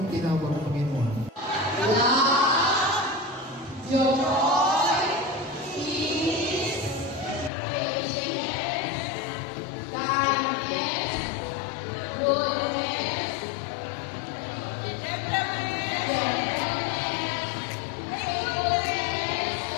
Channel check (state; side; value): drops out; right; at 7.5 s